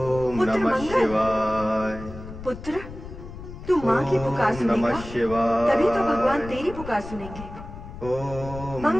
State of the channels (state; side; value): noise; left; rumble, 12 dB below the sound